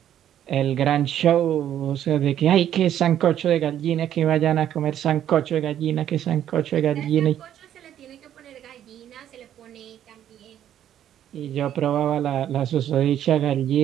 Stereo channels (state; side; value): quieter; left; 10.8 dB